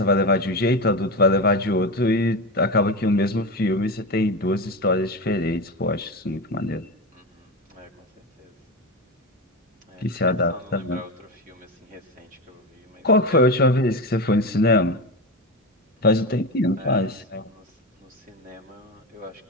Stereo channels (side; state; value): both; normal; correlation 0.19